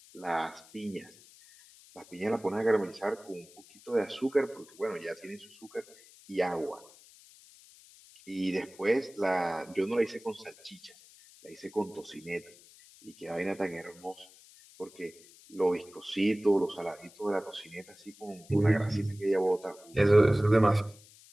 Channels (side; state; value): left; noise; hiss, 23 dB below the sound